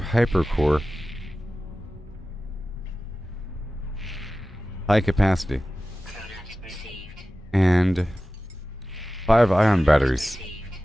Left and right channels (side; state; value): both; normal; correlation 0.95